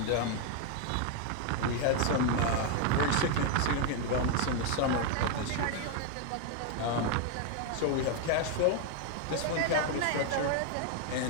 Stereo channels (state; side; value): different; both; correlation 0.01